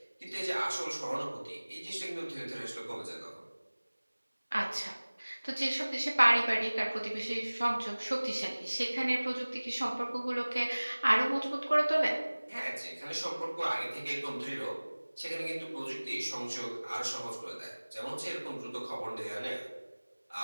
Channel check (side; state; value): both; inverted; correlation -1.00